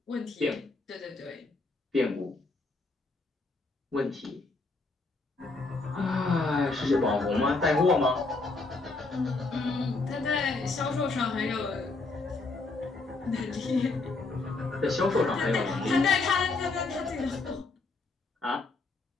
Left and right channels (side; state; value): right; quieter; 3.6 dB